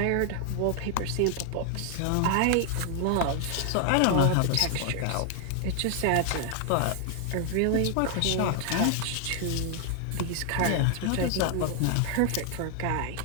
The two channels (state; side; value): different; both; correlation 0.00